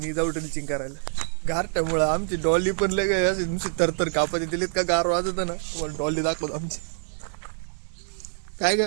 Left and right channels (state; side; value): silent; left; 61 dB below the other